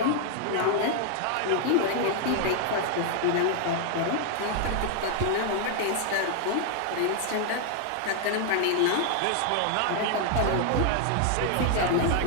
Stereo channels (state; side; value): different; both; correlation 0.00